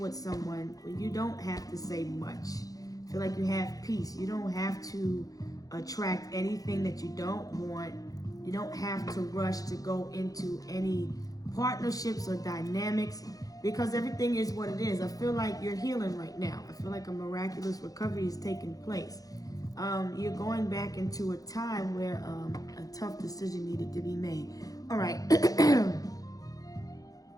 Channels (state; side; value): late; right; 0.17 ms